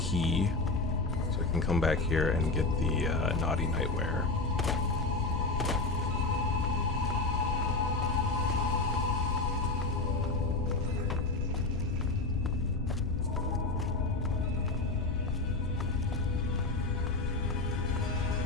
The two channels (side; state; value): right; quieter; 3.4 dB